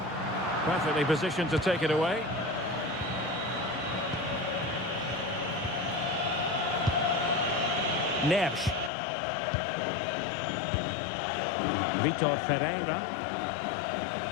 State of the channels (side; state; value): right; drops out; at 8.9 s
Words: Perfectly positioned to take it away. Neves. Vitor Ferreira.